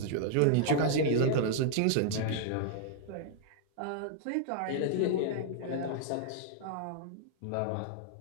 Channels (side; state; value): both; different; correlation -0.01